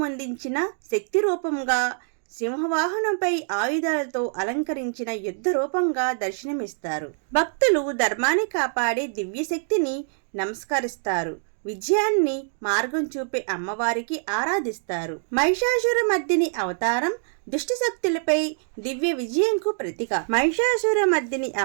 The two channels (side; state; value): left; silent; digital silence